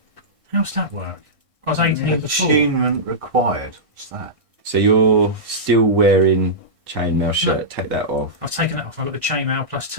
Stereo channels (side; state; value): left; late; 1.6 ms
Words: How's that work? I was 18 before. Attunement required. What's that? So you're still wearing chainmail shirt. Take that off. I've taken that off. I've got the chainmail